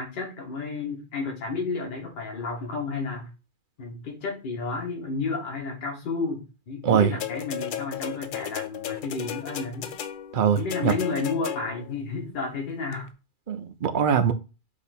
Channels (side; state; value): right; late; 2.4 ms